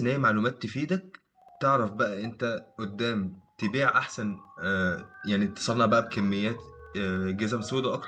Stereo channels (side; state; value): both; identical; correlation 1.00